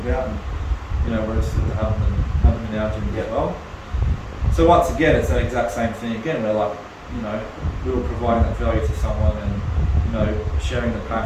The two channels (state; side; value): identical; both; correlation 1.00